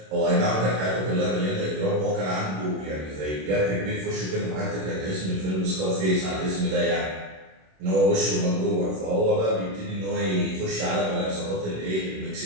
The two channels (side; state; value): left; late; 26 ms